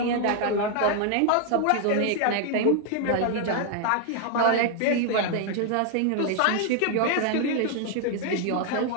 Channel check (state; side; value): different; both; correlation 0.00